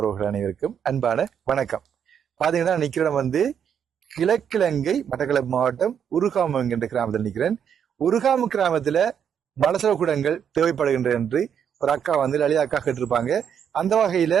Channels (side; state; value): left; quieter; 8.2 dB